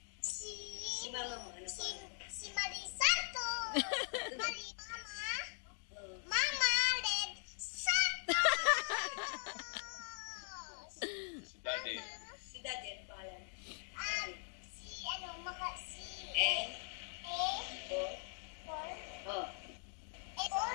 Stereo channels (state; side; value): silent; right; 50 dB below the other